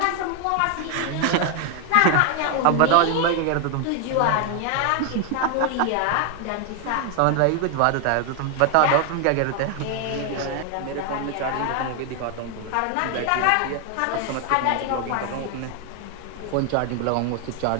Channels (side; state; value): both; different; correlation 0.00